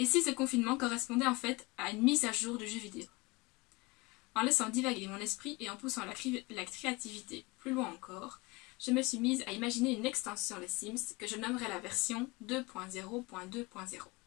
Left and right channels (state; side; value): quieter; right; 24.0 dB